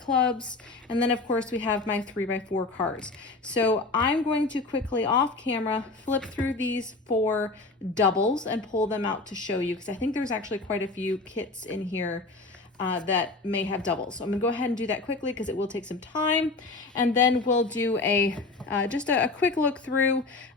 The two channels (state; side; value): quieter; right; 3.5 dB